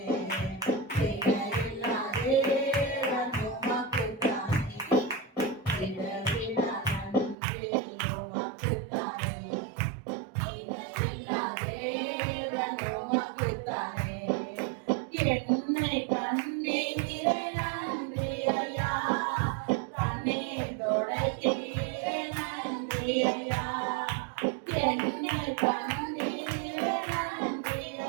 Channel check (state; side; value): drops out; left; at 7.4 s